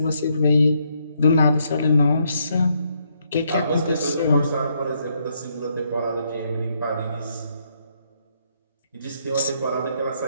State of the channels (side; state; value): both; inverted; correlation -0.75